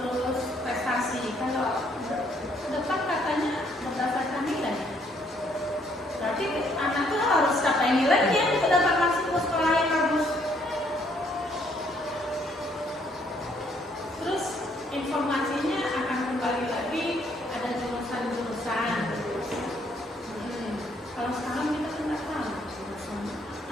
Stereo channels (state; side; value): normal; both; correlation 0.68